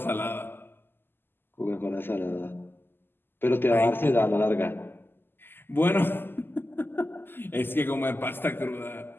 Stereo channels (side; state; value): right; late; 0.099 ms